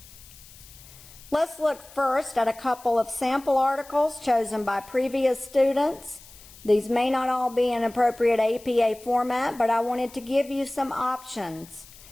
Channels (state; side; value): noise; left; hiss, 21 dB below the sound